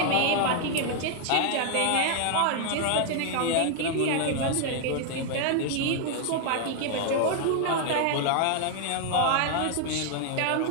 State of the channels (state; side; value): different; both; correlation 0.00